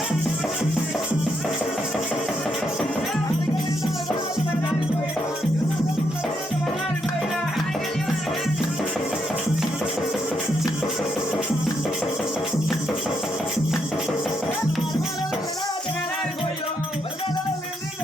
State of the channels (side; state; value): both; normal; correlation 0.78